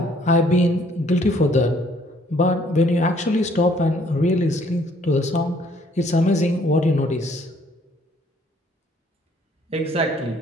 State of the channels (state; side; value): normal; both; correlation 0.63